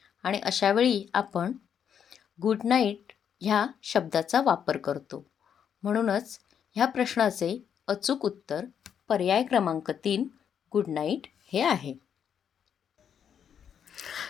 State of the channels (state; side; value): quieter; right; 8.2 dB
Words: आणि अशावेळी आपण गुड नाईट ह्या शब्दाचा वापर करतो. म्हणूनच ह्या प्रश्नाचे अचूक उत्तर पर्याय क्रमांक 3 गुड नाईट हे आहे.